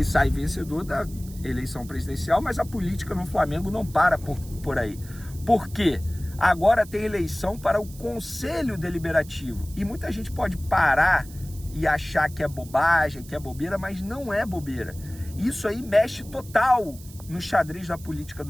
sai vencedor da eleição presidencial, mas a política no Flamengo não para por aí. Por quê? Agora tem eleição para o Conselho Deliberativo. E muita gente pode parar e achar que é bobagem, que é bobeira, mas não é bobeira. Isso aí mexe total no xadrez da política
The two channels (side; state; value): right; noise; hiss, 20 dB below the sound